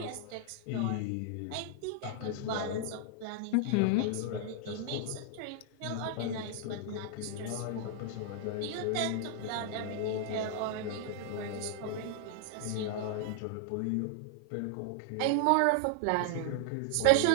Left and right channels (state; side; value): different; both; correlation 0.00